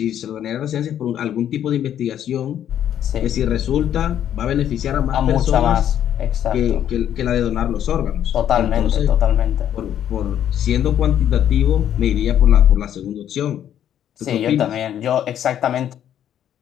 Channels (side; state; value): right; quieter; 10.3 dB